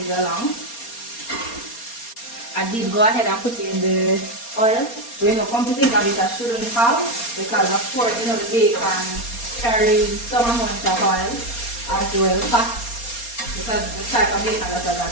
along. I did go ahead and put in the oil. But you know, come to think of it, I shouldn't have, because of course, you know, the bacon carries some amount of oil as well, fat, because the type of bacon that I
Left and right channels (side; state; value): right; late; 4.3 ms